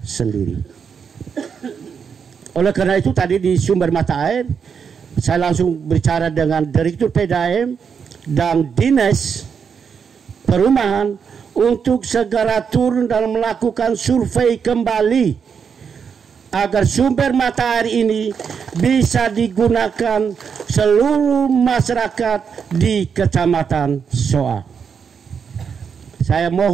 Oleh karena itu tadi di sumber mata air saya langsung bicara dengan Direktur PDAM dan Dinas Perumahan untuk segera turun dan melakukan survei kembali agar sumber mata air ini bisa digunakan seluruh masyarakat di Kecamatan Soa. Saya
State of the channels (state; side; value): quieter; left; 6.6 dB